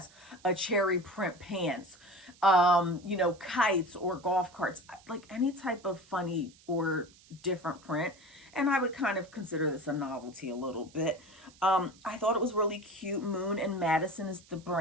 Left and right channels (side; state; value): right; noise; hiss, 26 dB below the sound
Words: a cherry print pants, you know, kites or golf carts, like any type of funny or different print. And I would kind of consider this a novelty a little bit. I thought it was really cute. Moon and Madison is the